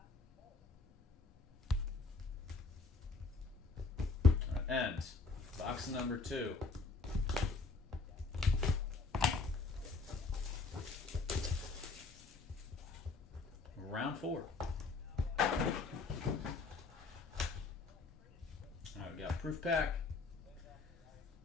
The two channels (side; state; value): right; quieter; 4.2 dB